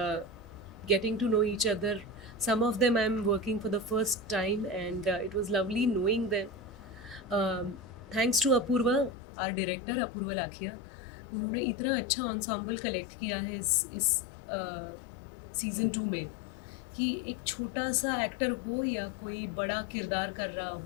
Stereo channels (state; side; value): drops out; right; at 9.1 s